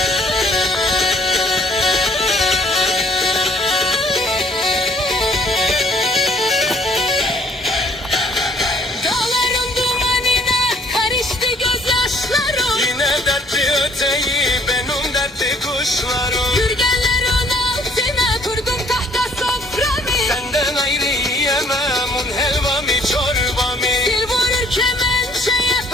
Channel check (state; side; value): normal; both; correlation 0.60